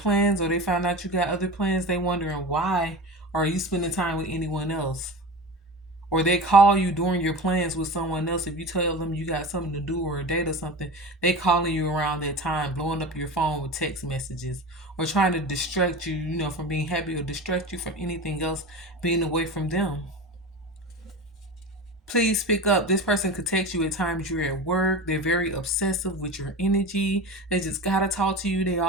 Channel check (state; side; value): normal; both; correlation 0.30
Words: or they find out you got other plans, they wondering why are you spending time with anyone else? Or they call you during your plans with someone else. If you tell them you got something to do or a date or something, they calling you around that time, blowing up your phone with text messages or trying to distract you, you know, from being happy or distract you from anything else, being away from them. Please pick up. This person could text you at times you're at work. They're very obsessive with your energy. They just gotta talk to you. They